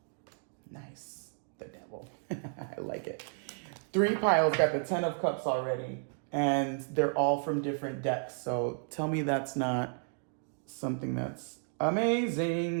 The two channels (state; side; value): silent; left; 56 dB below the other